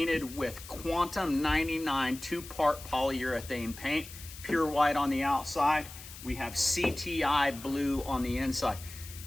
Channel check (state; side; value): noise; left; hiss, 15 dB below the sound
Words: with Quantum 99 2-part polyurethane paint, pure white on the outside. We have CTI blue on the inside.